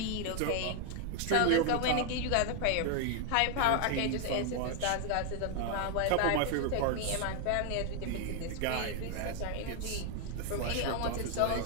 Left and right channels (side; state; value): both; different; correlation 0.00